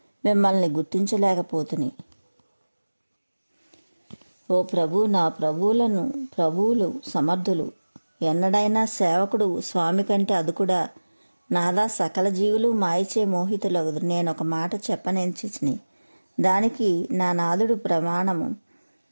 మిమ్మల్ని గుర్తించలేకపోతుని. ఓ ప్రభు, నా ప్రభువులు సమర్థులు. ఎన్నడైనా సేవకుడు స్వామి కంటే అదుకుడా? నాదా, సకల జీవులు మాయచే మోహితులగుదు. నేను ఒక మాట చెప్పనెంచిని, దానికి నా నాదుడు ప్రమాణము.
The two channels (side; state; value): both; inverted; correlation -1.00